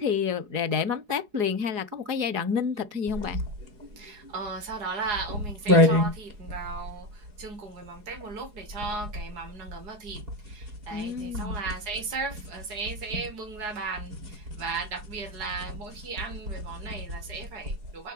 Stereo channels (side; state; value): left; late; 4.8 ms